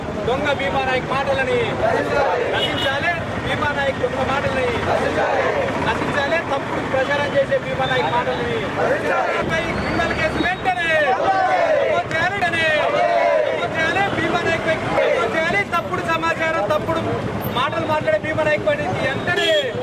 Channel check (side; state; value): both; identical; correlation 1.00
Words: దొంగ భీమా నాయక్ మాటలని, నశించాలే భీమా నాయక్ దొంగ మాటలని, నశించాలే తప్పుడు ప్రచారం చేసే భీమా నాయక్ మాటలని, క్రిమినల్ కేసు వెంటనే భీమా నాయక్ చేయాలి. తప్పుడు సమాచారం తప్పుడు మాటలు మాట్లాడే భీమా నాయక్ వెంటనే